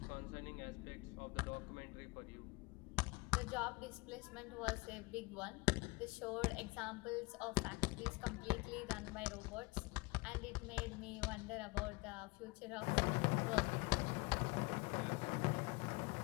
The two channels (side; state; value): right; quieter; 24.7 dB